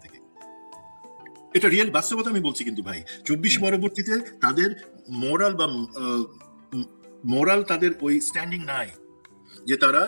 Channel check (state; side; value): inverted; both; correlation -1.00